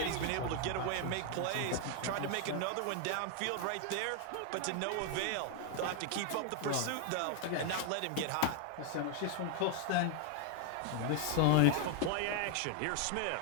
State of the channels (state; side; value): different; both; correlation 0.00